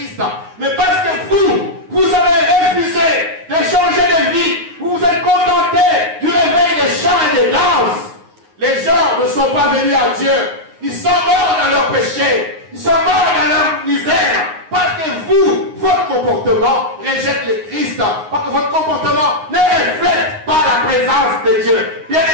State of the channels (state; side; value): late; left; 9.6 ms